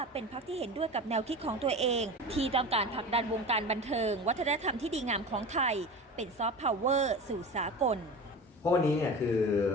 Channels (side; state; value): both; normal; correlation 0.31